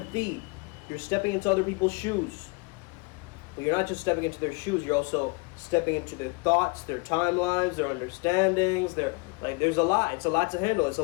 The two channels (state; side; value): quieter; right; 29.4 dB